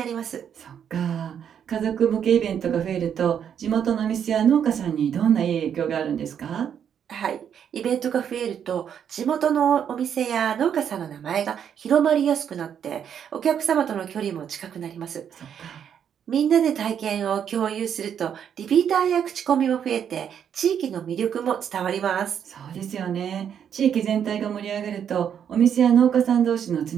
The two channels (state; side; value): quieter; left; 8.5 dB